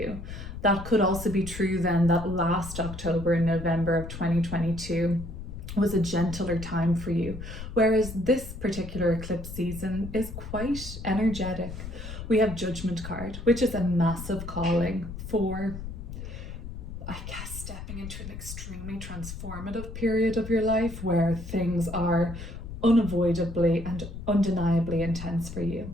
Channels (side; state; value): left; noise; rumble, 10 dB below the sound